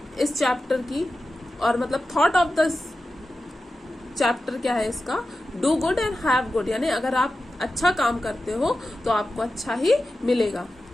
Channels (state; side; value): normal; both; correlation 0.93